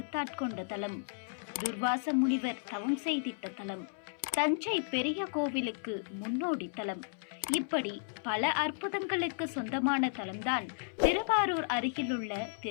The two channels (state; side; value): silent; right; 55 dB below the other